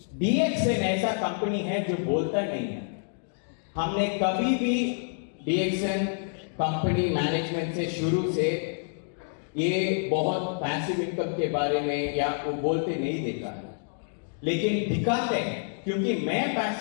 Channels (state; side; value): silent; right; digital silence